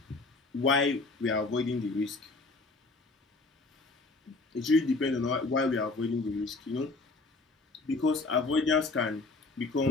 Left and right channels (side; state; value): right; quieter; 3.5 dB